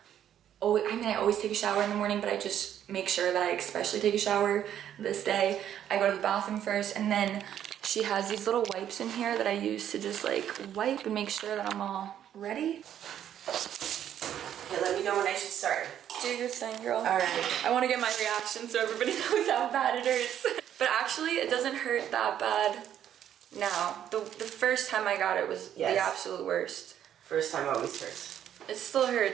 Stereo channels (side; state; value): left; quieter; 10.3 dB